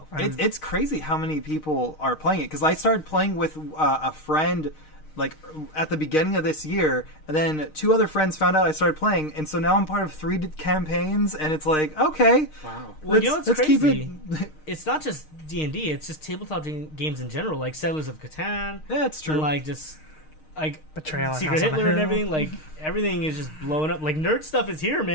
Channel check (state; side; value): late; right; 6.5 ms